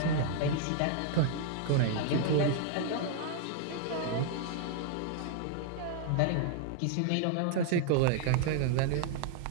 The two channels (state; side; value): different; both; correlation 0.00